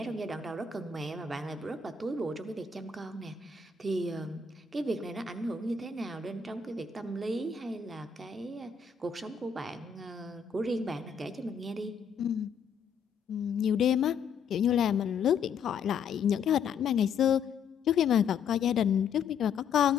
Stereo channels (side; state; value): right; quieter; 6.2 dB